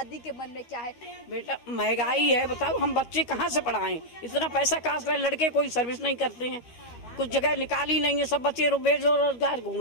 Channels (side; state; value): right; late; 13 ms